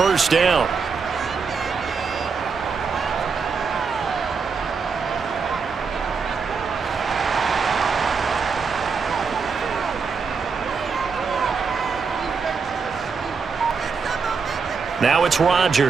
down. Now it's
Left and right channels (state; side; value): quieter; left; 5.4 dB